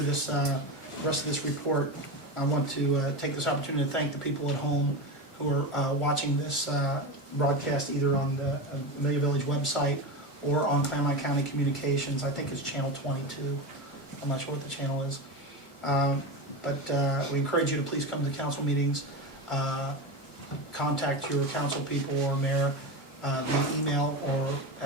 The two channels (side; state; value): right; late; 1.5 ms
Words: this rest of this report, I want to take this opportunity to thank the people at home who are watching this broadcast either on the Amelia Village website or on Claremont County Communications. I think it's channel 22. I'm not sure what the channel is. But we encourage you to please come to the council meetings, contact your council people or mayor via email or